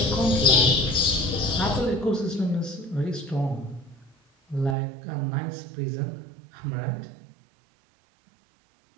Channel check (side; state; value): left; drops out; at 4.8 s